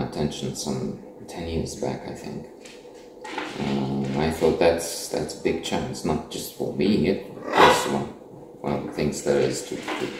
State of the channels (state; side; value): identical; both; correlation 1.00